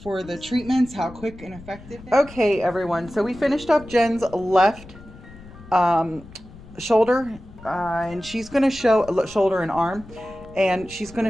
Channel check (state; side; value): noise; left; rumble, 19 dB below the sound